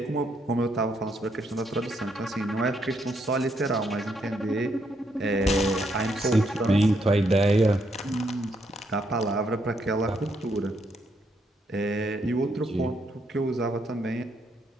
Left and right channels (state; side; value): normal; both; correlation 0.75